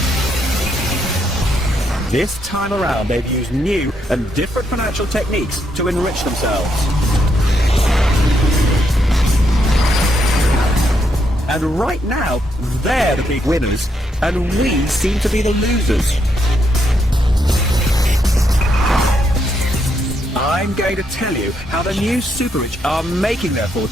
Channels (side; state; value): both; normal; correlation 0.77